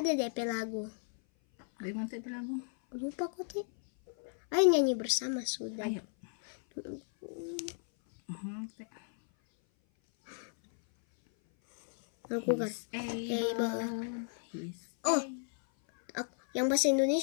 DP lagu. Bagaimana DP lagu? Lupa kok, Teh. Ayo nyanyi bersama sudah. Ayo. Aku kan. Yang bahasa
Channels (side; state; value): right; silent; 55 dB below the other